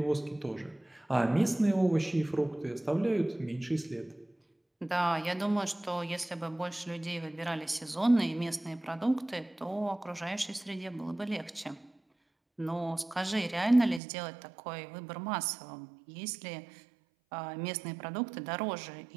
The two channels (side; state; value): left; drops out; at 14.0 s